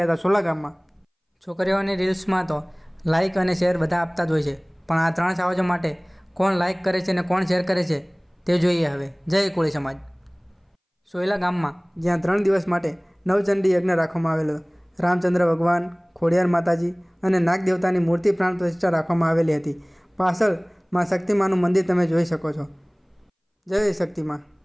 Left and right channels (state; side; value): identical; both; correlation 1.00